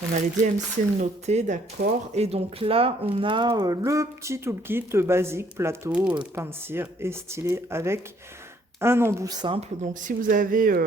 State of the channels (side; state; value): both; normal; correlation 0.64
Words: On a les DMC notés, d'accord. Et donc là, on a le petit toolkit basique, plateau, pain de cire et stylet avec un embout simple. Donc si vous avez...